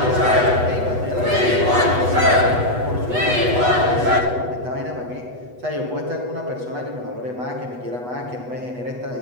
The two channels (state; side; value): late; left; 8.1 ms